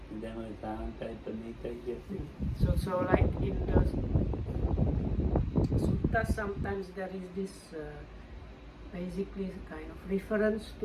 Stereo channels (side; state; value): both; identical; correlation 1.00